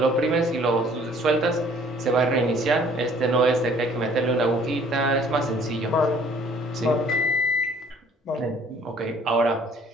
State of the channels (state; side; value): normal; both; correlation 0.57